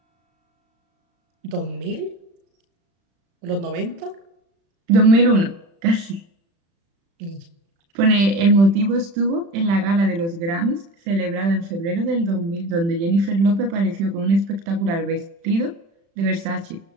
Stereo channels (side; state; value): left; late; 36 ms